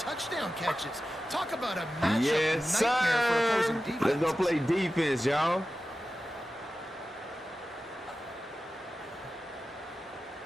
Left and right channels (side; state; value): both; normal; correlation 0.94